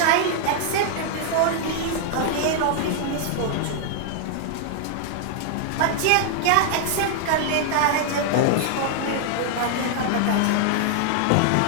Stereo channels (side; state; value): both; different; correlation 0.00